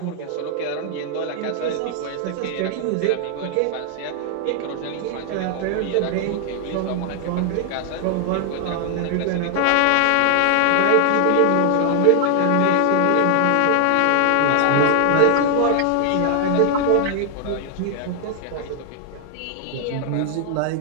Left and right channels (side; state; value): both; different; correlation 0.00